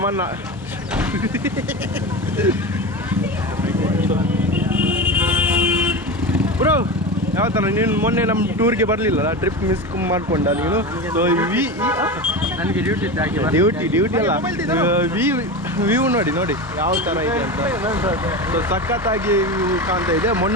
ಬ್ರೋ ಯಾವ ಥರ ನೀನು ಮೊನ್ನೆ ನಮ್ಮ ಟೂರ್ಗೆ ಬರಲಿಲ್ಲ, ಟ್ರಿಪ್ ಮಿಸ್ ಮಾಡ್ಕೊಂಡ ನೀನು. ಸೊ ನನಗೆ ಡ್ಯೂಟಿ ಅಲ್ಲ, ವ್ಯೂ ನೋಡಿ ಯಾವ ಥರ ಇದೆ ಅಂತ. ಸೊ ಸಖತ್ತಾಗಿ ವ್ಯೂ ಕಾಣ್ತಾ ಇದೆ.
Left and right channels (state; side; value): normal; both; correlation 0.24